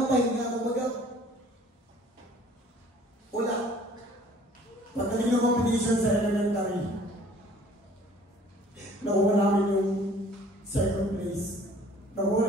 pahinga. Kumbaga, wala. Pagdating ng competition sa elementary, nakuha namin yung second place.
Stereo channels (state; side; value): normal; both; correlation 0.53